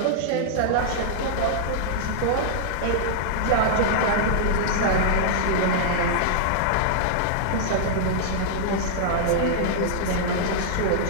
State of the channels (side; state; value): both; different; correlation -0.01